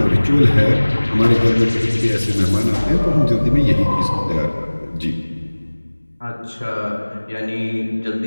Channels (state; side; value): inverted; both; correlation -1.00